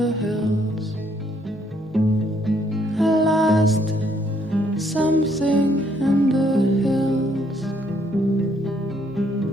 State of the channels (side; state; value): both; normal; correlation 0.69